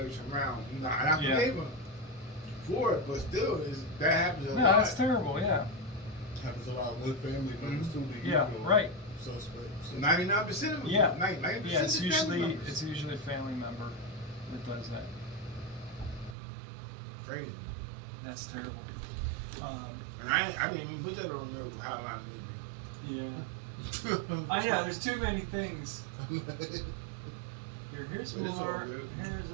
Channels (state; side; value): drops out; left; at 16.4 s